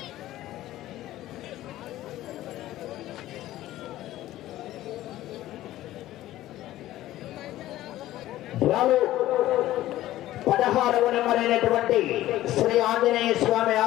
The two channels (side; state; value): right; quieter; 14.8 dB